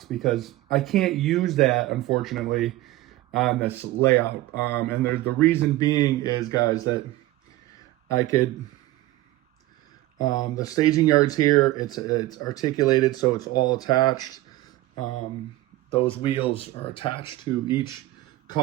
because I can't use that, unfortunately, on this layout. And the reason being is, guys, that I could, the staging yards here, it's articulated, so it's all attached. Those wheels are attached to each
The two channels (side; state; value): left; quieter; 17.0 dB